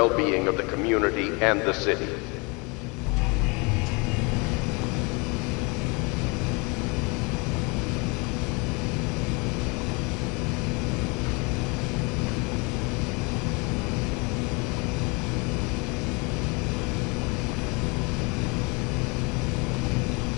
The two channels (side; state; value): right; quieter; 29.5 dB